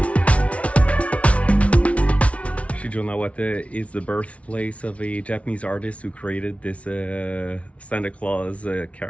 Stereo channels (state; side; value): late; right; 0.064 ms